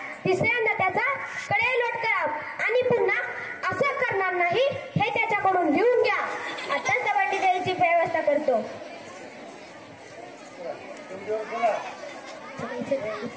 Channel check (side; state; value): both; identical; correlation 1.00